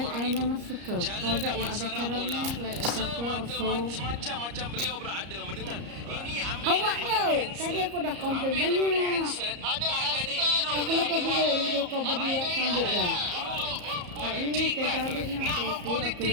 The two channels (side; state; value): left; late; 34 ms